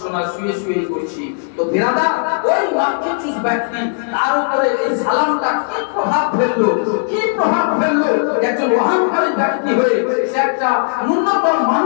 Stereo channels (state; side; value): silent; right; 68 dB below the other